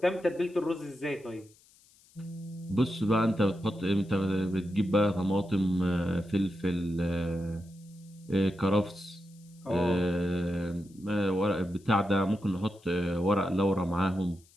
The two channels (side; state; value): left; noise; hiss, 29 dB below the sound